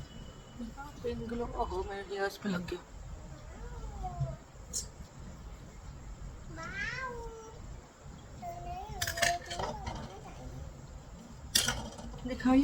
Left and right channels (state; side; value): identical; both; correlation 1.00